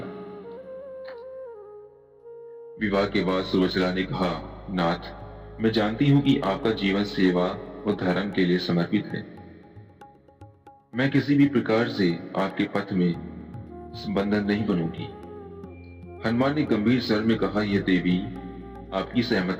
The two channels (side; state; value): both; identical; correlation 1.00